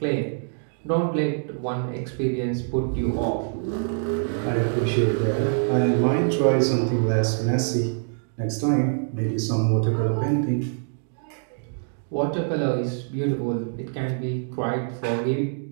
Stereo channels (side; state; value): left; silent; digital silence